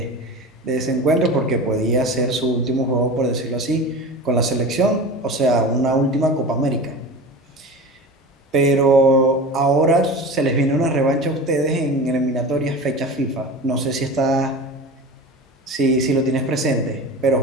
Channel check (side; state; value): both; normal; correlation 0.32